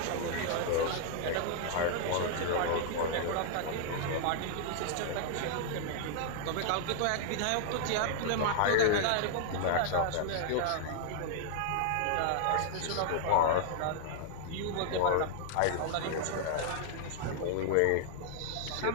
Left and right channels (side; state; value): both; different; correlation -0.01